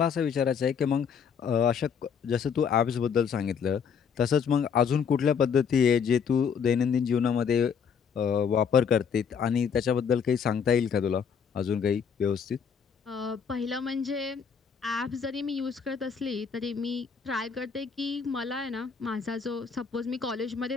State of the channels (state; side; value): quieter; right; 6.7 dB